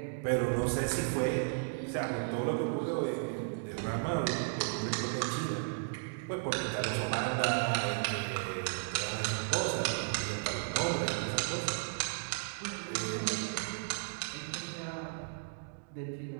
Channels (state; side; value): silent; left; digital silence